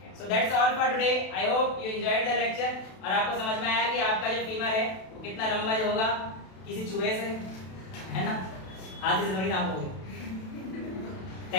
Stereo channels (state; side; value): late; right; 32 ms